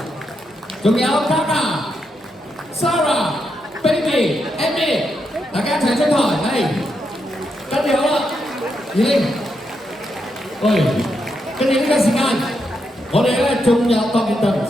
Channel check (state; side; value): normal; both; correlation 0.82